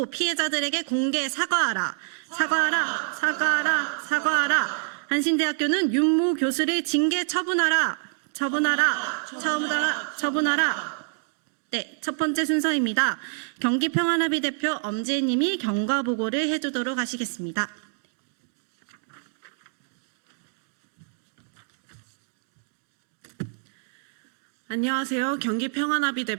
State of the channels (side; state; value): left; silent; digital silence